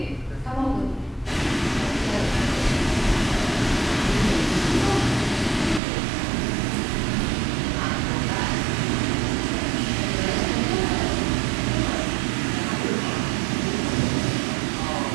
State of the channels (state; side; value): drops out; left; at 5.8 s